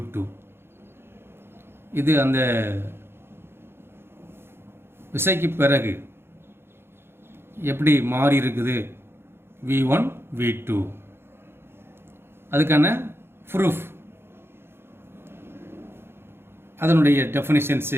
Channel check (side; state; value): left; late; 0.11 ms